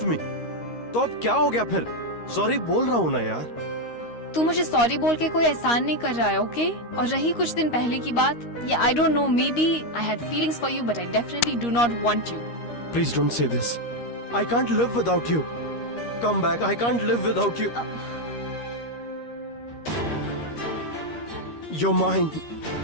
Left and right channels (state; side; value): late; right; 13 ms